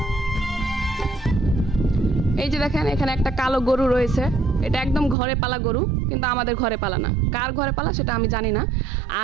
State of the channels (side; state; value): left; drops out; at 5.2 s